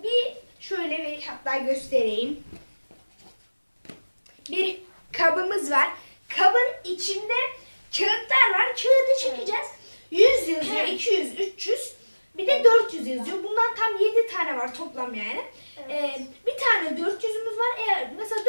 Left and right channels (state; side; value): inverted; both; correlation -1.00